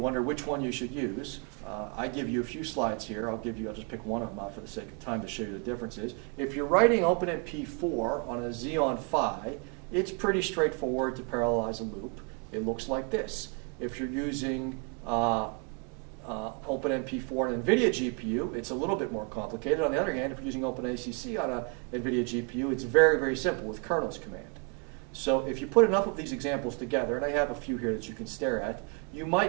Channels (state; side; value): quieter; left; 36.4 dB